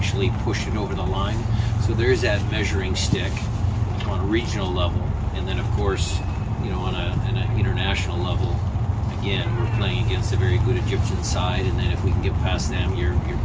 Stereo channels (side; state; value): both; identical; correlation 1.00